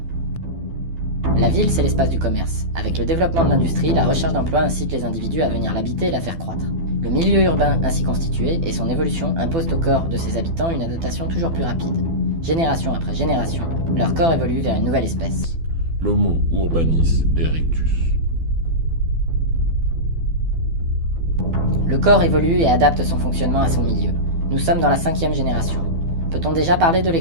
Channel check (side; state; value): left; late; 12 ms